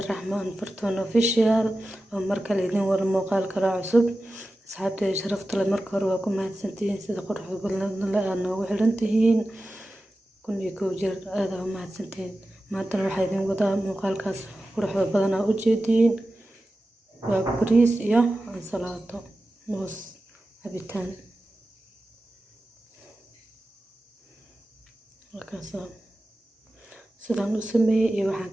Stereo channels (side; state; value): both; normal; correlation 0.94